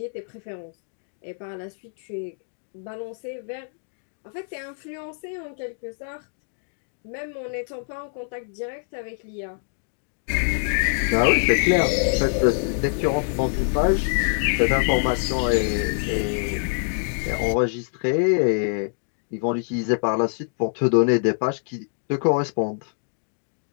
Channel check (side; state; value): right; silent; digital silence